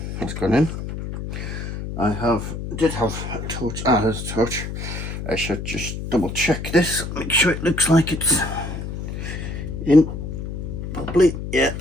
That's gone in. I did have a torch. Ah, there's a torch. I should just double check this. Make sure it looks like it's in properly. Yeah,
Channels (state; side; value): noise; left; hum, 6 dB below the sound